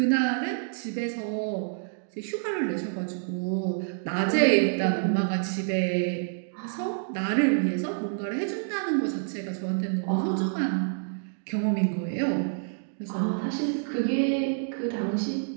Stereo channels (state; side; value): silent; left; digital silence